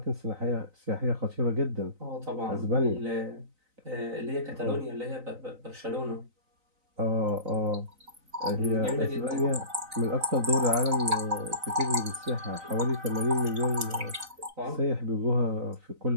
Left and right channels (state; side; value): late; left; 3.9 ms